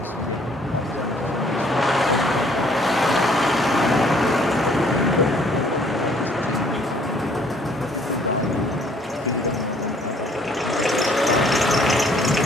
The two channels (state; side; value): normal; both; correlation 0.61